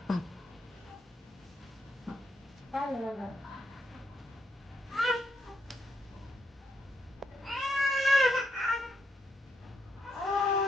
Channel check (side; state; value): both; normal; correlation 0.78